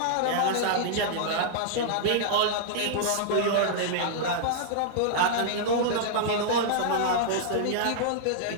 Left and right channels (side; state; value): both; different; correlation -0.01